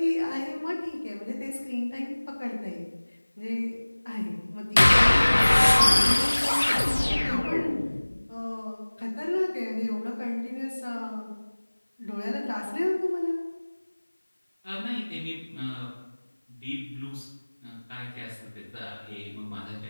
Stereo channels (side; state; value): both; inverted; correlation -1.00